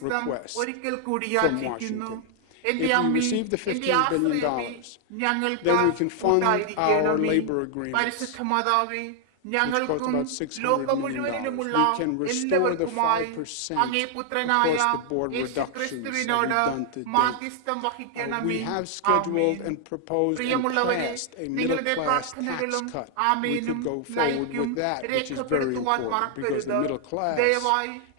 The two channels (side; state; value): both; different; correlation 0.00